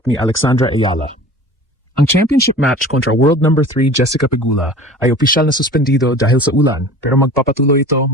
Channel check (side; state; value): both; normal; correlation 0.41